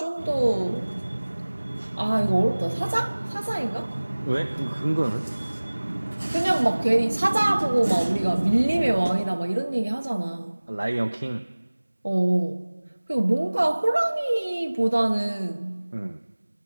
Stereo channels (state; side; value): inverted; both; correlation -1.00